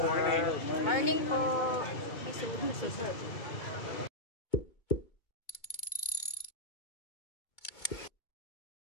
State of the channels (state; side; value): late; right; 2.2 ms